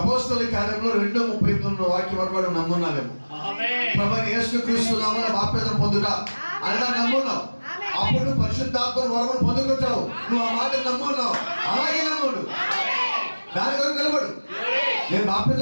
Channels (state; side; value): inverted; both; correlation -1.00